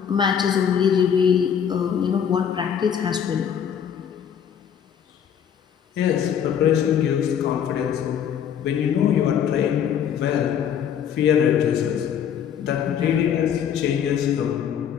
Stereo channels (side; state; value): right; quieter; 8.5 dB